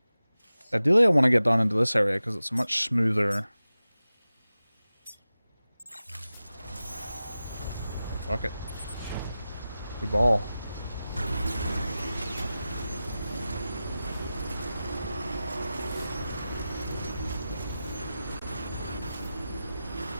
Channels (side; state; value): both; inverted; correlation -0.94